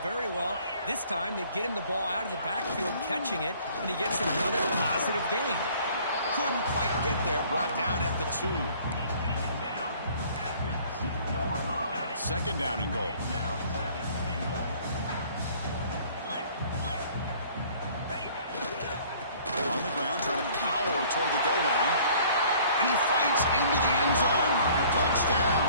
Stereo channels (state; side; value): inverted; both; correlation -0.54